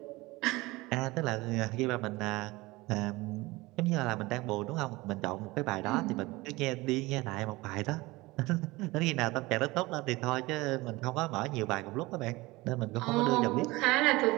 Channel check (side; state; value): left; quieter; 21.3 dB